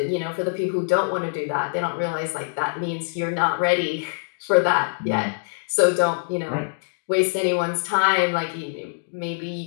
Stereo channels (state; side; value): silent; right; digital silence